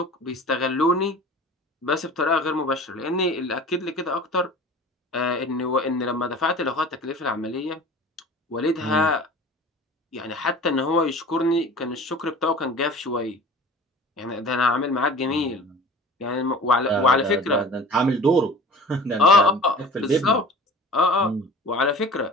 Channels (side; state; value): both; normal; correlation 0.41